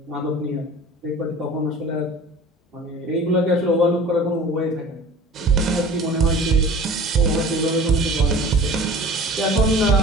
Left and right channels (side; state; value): both; normal; correlation 0.42